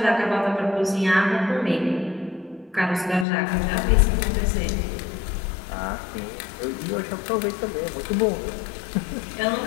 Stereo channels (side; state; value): right; drops out; at 3.2 s